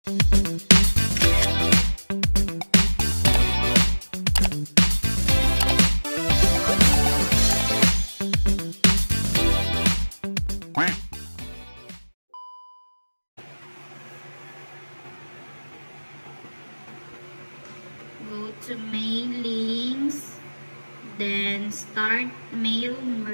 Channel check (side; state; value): both; inverted; correlation -1.00